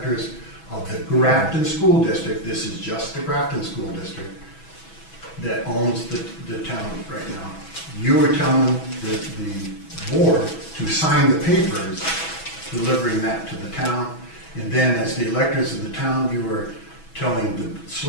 of the Grafton School District. This is just the Grafton School District that owns the town right now. You were telling the board to sign the papers, delivering that to the town, and then as the electors of the town, you were telling the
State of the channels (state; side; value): late; right; 6.1 ms